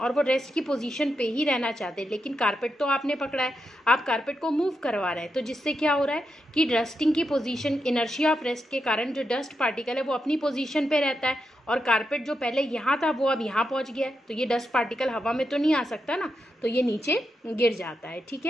वो रेस्ट की पोजीशन पे ही रहना चाहते हैं। लेकिन कारपेट तो आपने पकड़ा है, आप कारपेट को मूव करवा रहे हैं, तो जिससे क्या हो रहा है कि रेस्टिंग की पोजीशन, इनर्शिया ऑफ रेस्ट के कारण जो डस्ट पार्टिकल है वो अपनी पोजीशन पे रहता है, और कारपेट जो पहले यहाँ था वो अब यहाँ पहुँच गया है। तो ये डस्ट पार्टिकल हवा में तो नहीं आ सकता ना, तो ये नीचे गिर जाता है, ठीक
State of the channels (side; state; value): both; normal; correlation 0.85